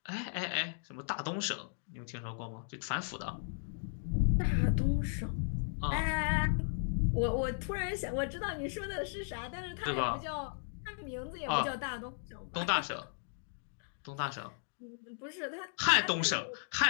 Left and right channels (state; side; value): silent; right; digital silence